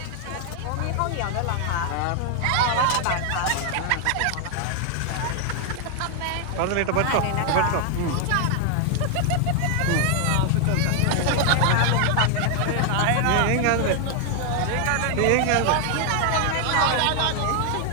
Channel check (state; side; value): different; both; correlation 0.00